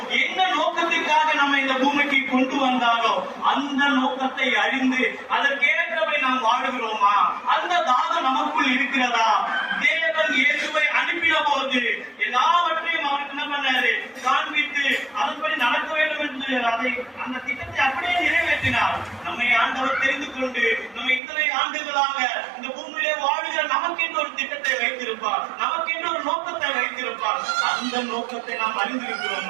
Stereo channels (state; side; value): drops out; left; at 21.2 s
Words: என்ன நோக்கத்திற்காக நம்ம இந்த பூமிக்கு கொண்டு வந்தாரோ, அந்த நோக்கத்தை அறிந்து அதற்கேற்றவை நாம் வாழுகிறோமா? அந்த தாகம் நமக்குள் இருக்கிறதா? தேவன் இயேசுவை அனுப்பின போது எல்லாவற்றையும் அவருக்கு என்ன பண்ணாரு? காண்பித்து அதன்படி நடக்க வேண்டும் என்று அந்த திட்டத்தை அப்படியே நிறைவேற்றினார். நம்மை ஆண்டவர் தெரிந்து கொண்டு நம்ம இத்தனை ஆண்டுகளாக இந்த பூமியிலே வாழுகிற நமக்கென்று ஒரு திட்டத்தை வைத்திருப்பார், நமக்கென்று ஒரு நோக்கத்தை வைத்திருப்பார். அந்த நோக்கத்தை நாம்